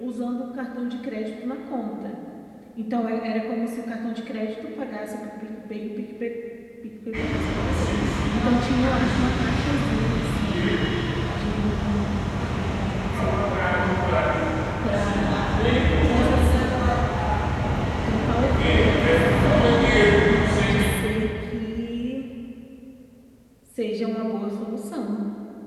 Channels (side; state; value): both; identical; correlation 1.00